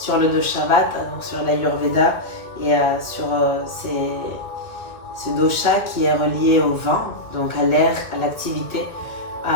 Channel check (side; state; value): right; late; 1.9 ms